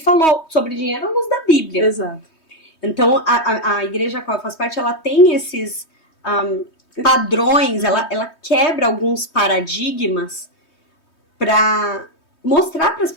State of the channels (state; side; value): late; right; 3.2 ms